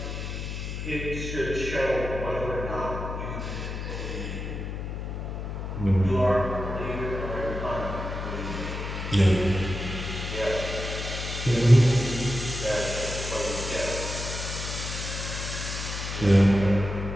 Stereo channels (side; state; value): left; noise; hum, 5 dB below the sound